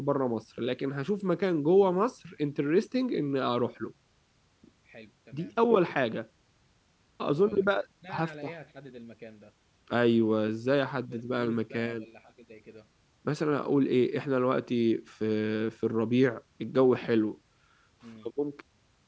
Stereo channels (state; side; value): identical; both; correlation 1.00